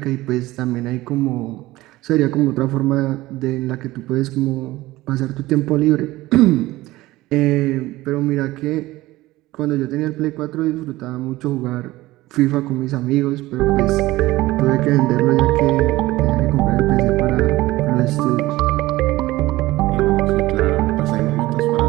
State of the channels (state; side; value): quieter; left; 18.1 dB